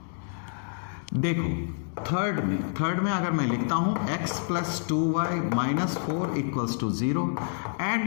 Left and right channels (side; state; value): right; silent; digital silence